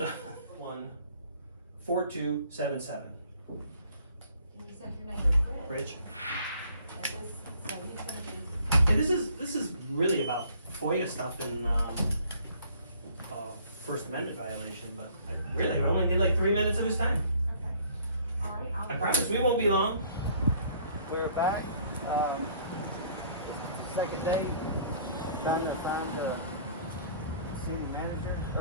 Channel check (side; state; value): both; inverted; correlation -0.57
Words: 14277. You said your name is Rich. Rich. And this, so he's gonna be, And this is really about FOIA stuff and First Amendment violation, but I only did like 3 minutes of his time. okay. All right, I promise we won't be long. We're back, second day, trying to find the city manager,